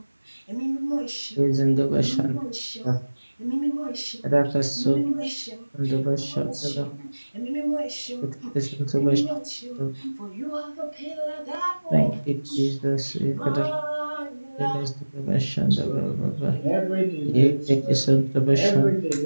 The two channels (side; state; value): both; inverted; correlation -1.00